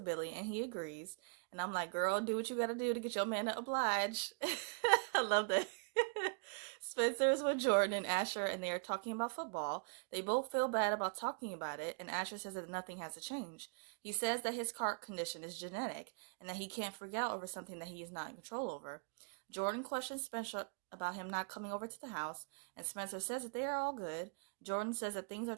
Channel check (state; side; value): quieter; left; 37.7 dB